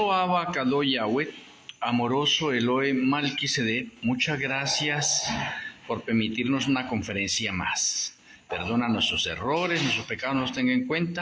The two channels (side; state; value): both; identical; correlation 1.00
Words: Abba Kadosh Yahweh, amoroso Elohe Malquisedec, muchas gracias por permitirnos una conferencia más. Perdona nuestros errores, nuestros pecados nos tenga en